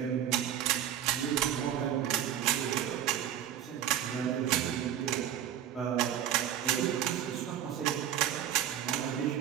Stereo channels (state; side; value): quieter; left; 10.6 dB